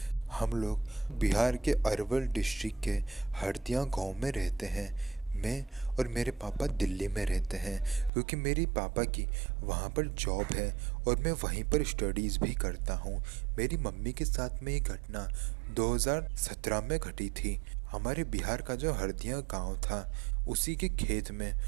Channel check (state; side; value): drops out; left; at 8.1 s